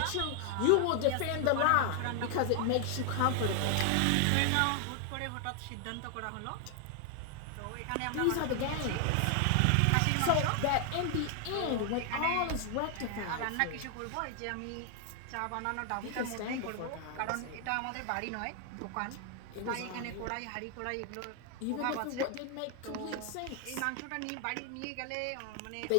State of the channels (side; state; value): both; different; correlation 0.00